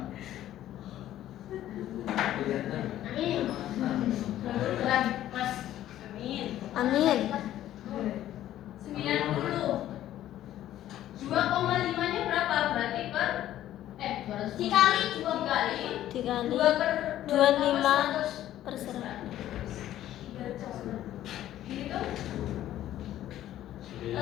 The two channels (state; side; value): quieter; right; 12.8 dB